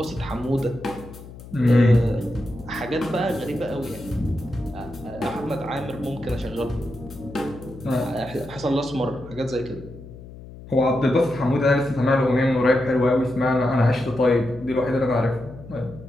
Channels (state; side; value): noise; left; hum, 16 dB below the sound